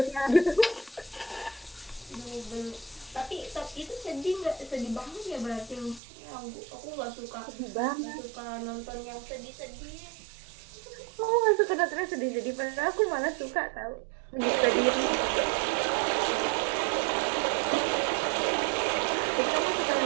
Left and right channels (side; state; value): left; drops out; at 6.0 s